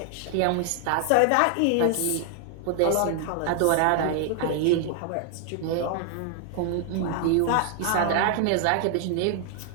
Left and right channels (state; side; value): different; both; correlation 0.00